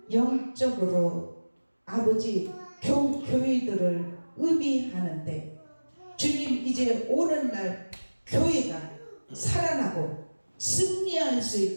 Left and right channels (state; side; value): inverted; both; correlation -1.00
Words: 영적으로 아버지 교회들을 의미하는데 주님, 이제 오늘날 교회가 살아나고 승리할 수